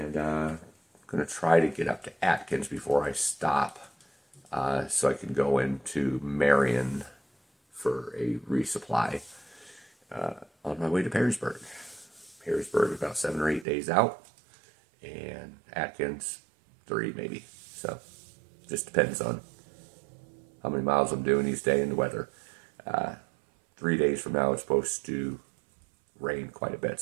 I'm going to try to get up to Atkins before I stop, so I can go into Marion for a resupply on my way to Perrysburg. Perrysburg is about 7 or 8 days out, and Atkins 3 maybe. So just depends on how many miles I'm doing each day and the weather. 3 days from now it's supposed to rain quite a bit,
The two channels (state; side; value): drops out; left; at 13.7 s